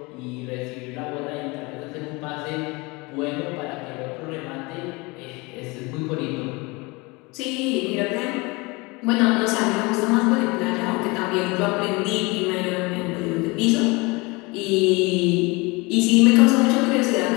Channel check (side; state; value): right; quieter; 25.5 dB